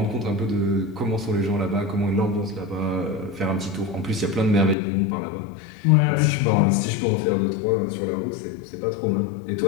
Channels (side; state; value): right; drops out; at 4.8 s